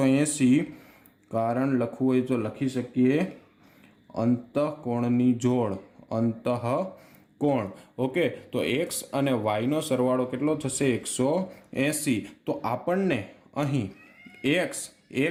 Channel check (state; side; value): identical; both; correlation 1.00